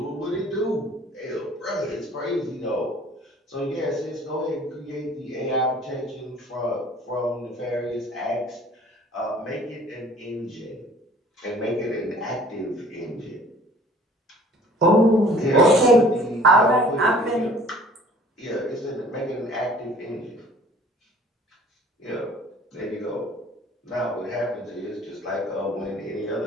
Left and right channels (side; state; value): both; normal; correlation 0.52